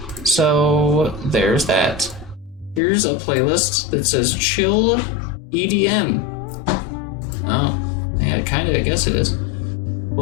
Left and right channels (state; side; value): drops out; right; at 2.8 s